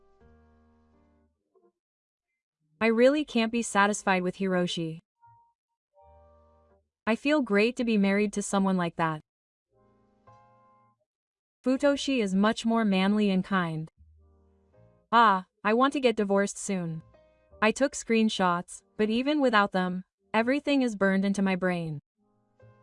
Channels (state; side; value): identical; both; correlation 1.00